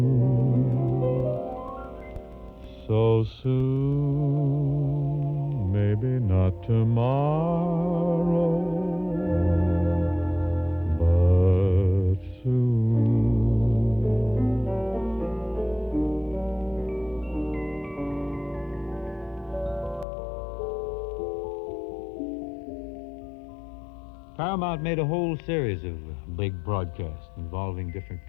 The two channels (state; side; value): drops out; right; at 20.1 s